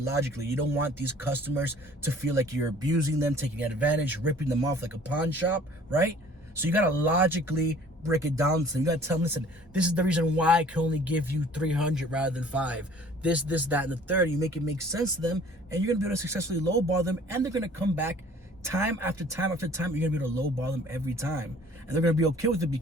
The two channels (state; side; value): normal; both; correlation 0.52